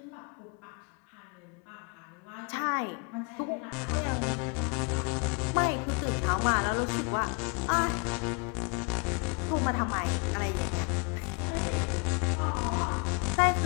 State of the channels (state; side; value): quieter; right; 33.5 dB